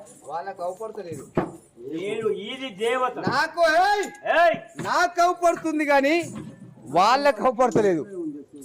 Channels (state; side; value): identical; both; correlation 1.00